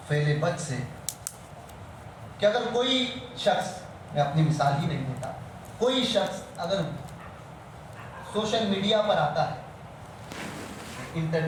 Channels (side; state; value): both; identical; correlation 1.00